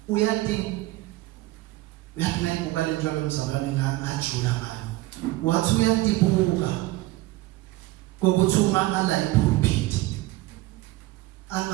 uyathi nayibuka lento yomzalwane ngajula ngani wathi uyatibuka kokuthi uma ala ipulpit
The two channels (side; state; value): left; quieter; 18.5 dB